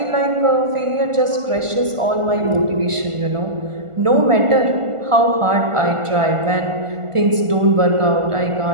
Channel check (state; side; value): late; left; 1.5 ms